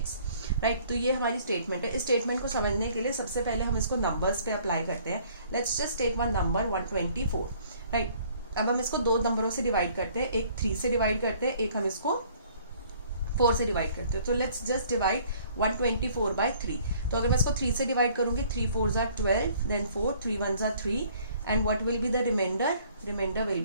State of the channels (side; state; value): both; inverted; correlation -0.58